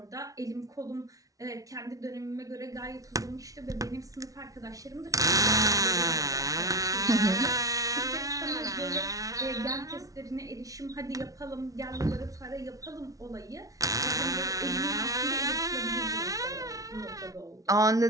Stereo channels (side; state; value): left; late; 0.17 ms